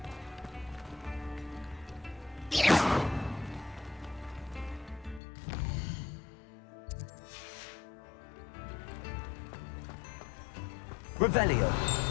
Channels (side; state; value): right; drops out; at 5.2 s